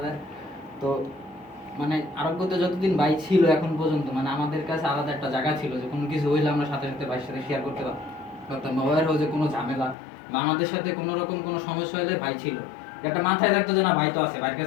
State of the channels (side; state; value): right; drops out; at 10.0 s